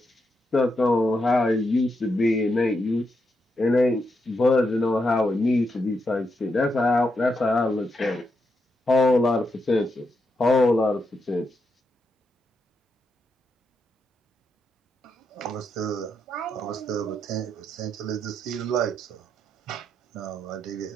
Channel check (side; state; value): both; normal; correlation 0.82